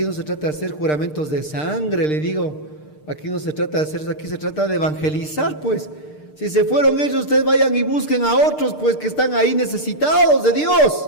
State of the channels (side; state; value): right; late; 6.6 ms